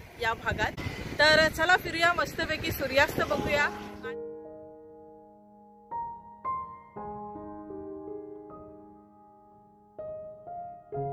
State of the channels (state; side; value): identical; both; correlation 1.00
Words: या भागात। तर चला फिरूया, मस्तपैकी सूर्यास्त बघूया।